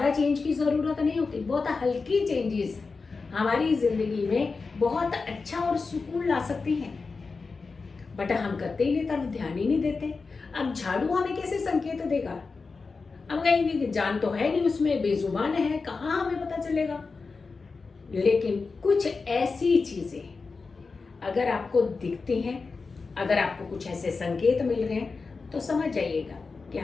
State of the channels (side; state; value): right; quieter; 4.4 dB